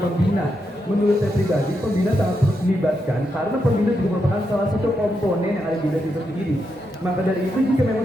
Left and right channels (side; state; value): both; normal; correlation 0.83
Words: Menurut saya pribadi, pembina sangat perlu dilibatkan karena pembina juga merupakan salah satu komponen yang ada di desa itu sendiri. Maka dari itu jika